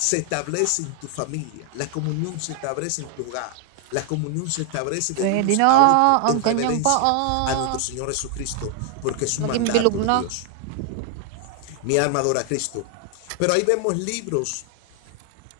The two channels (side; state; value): both; different; correlation 0.00